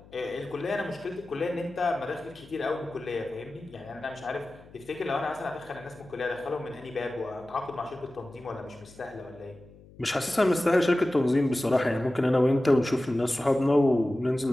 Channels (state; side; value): noise; left; hum, 23 dB below the sound